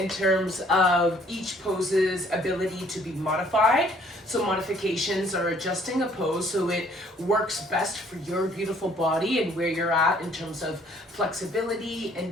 terms of each pose's ability to be modified. So modifications are adjusting a pose so it works best for your beautiful body and where you're at in terms of flexibility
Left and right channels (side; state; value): both; normal; correlation 0.60